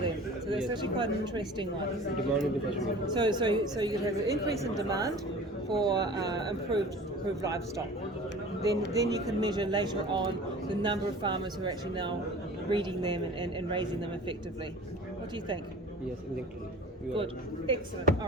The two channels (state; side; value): normal; both; correlation 0.41